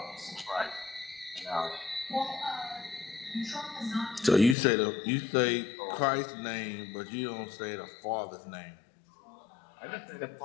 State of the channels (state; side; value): drops out; right; at 4.5 s